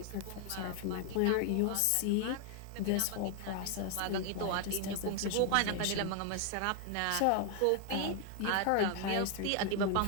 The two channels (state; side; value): different; both; correlation 0.00